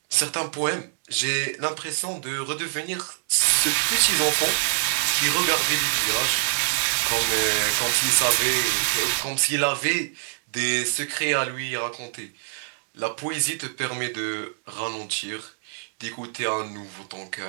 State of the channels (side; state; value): left; silent; digital silence